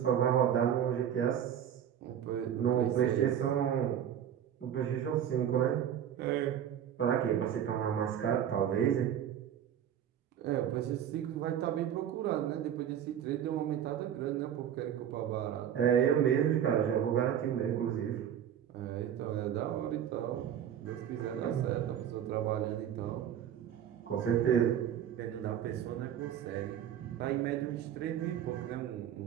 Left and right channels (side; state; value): left; quieter; 9.8 dB